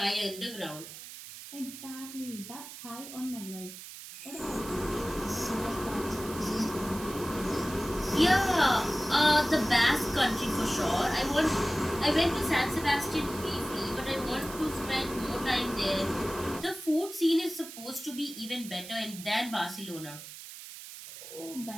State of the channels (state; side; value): noise; right; hiss, 13 dB below the sound